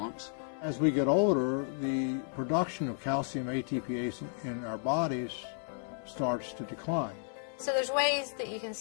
As we get older, the production of calcium ATPase in our bodies starts to decline. So there's ways that you can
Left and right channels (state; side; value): silent; right; 56 dB below the other